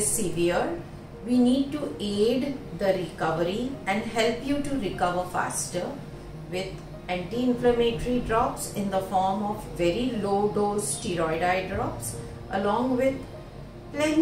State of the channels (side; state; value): both; identical; correlation 1.00